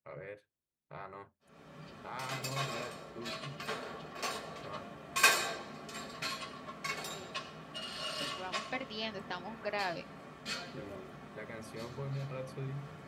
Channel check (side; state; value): both; identical; correlation 1.00